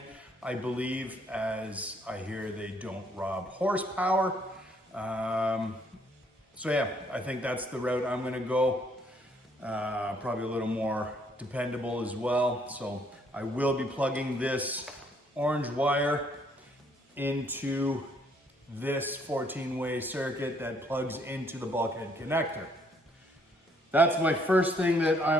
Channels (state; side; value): normal; both; correlation 0.67